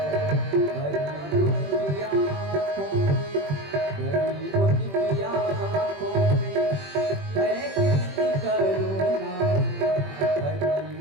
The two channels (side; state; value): left; late; 21 ms